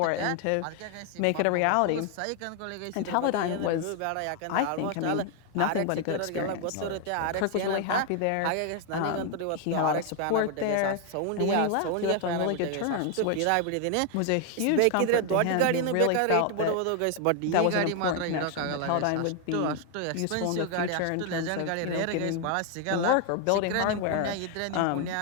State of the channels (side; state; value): both; different; correlation 0.00